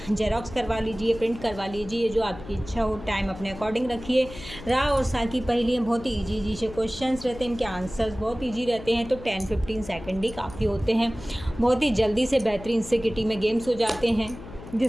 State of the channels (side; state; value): left; noise; hum, 14 dB below the sound